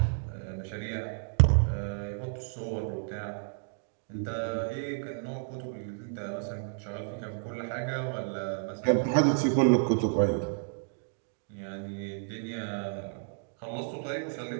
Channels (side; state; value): left; silent; digital silence